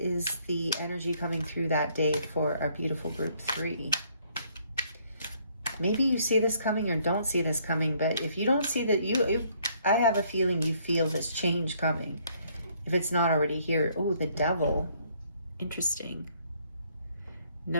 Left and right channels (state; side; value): inverted; both; correlation -0.66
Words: the energy coming through that day for our beautiful group 3? Maybe you see this coming or don't see this coming, but if you don't see that, I have a feeling you feel this change coming. If it's not already here. Oh, the Devil. Interesting.